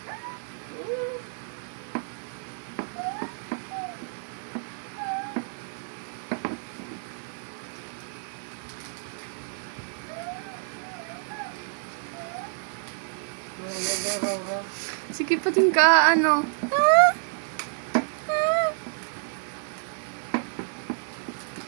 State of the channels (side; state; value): left; silent; 59 dB below the other